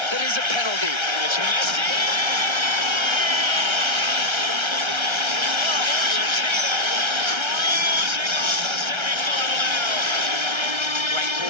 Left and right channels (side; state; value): left; late; 1.3 ms